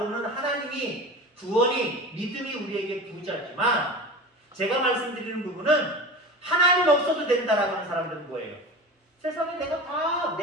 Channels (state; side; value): normal; both; correlation 0.32